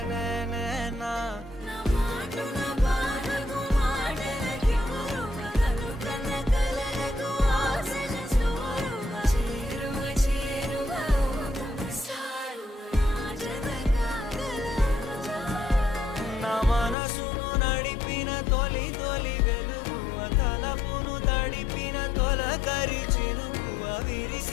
నేనేనా మనసును నడిపిన తొలి తొలి వెలుగు తలపును తడిపిన తొలకరి చిరుకువ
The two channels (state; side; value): drops out; right; at 16.9 s